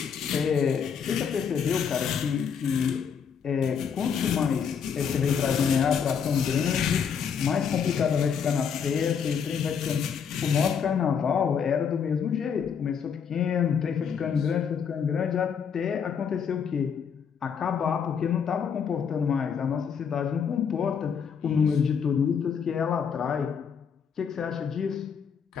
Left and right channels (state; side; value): quieter; right; 7.0 dB